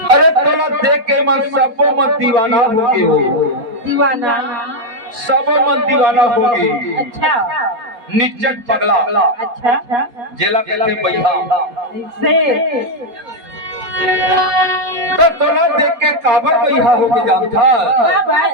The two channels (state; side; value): late; left; 4.1 ms